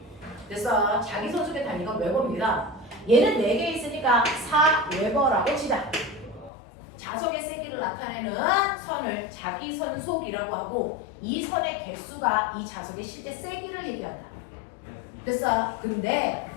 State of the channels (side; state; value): right; drops out; at 6.5 s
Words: 그래서 자기선속의 단위가 웨버입니다. 얘는 4개 있으니까 4 웨버라고 치자. 자석의 세기를 나타내는 선을 자기선속이라고 하고 이 선의 개수가 이 자석의 실제 세기를 얘기한다. 그래서 근데